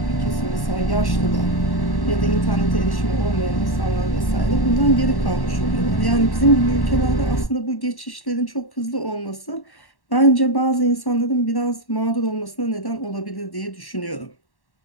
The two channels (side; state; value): right; late; 1.1 ms